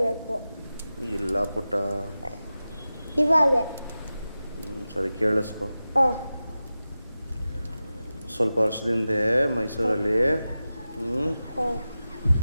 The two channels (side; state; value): both; inverted; correlation -0.94